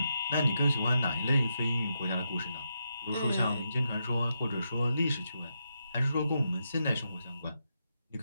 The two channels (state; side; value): inverted; both; correlation -0.83